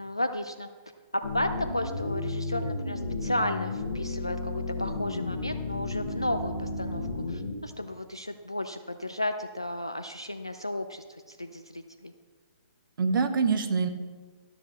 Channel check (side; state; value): both; inverted; correlation -0.74